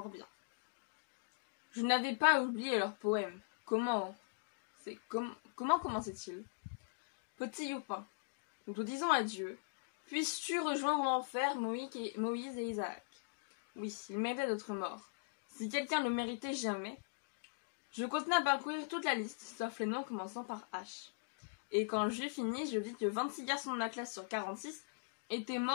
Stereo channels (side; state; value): right; quieter; 35.4 dB